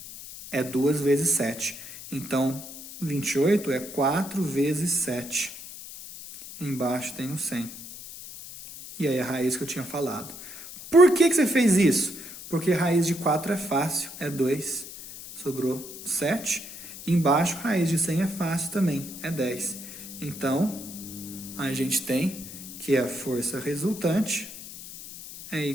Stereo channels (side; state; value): left; noise; hiss, 13 dB below the sound